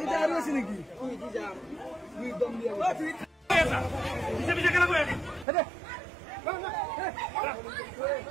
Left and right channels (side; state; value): left; drops out; at 5.5 s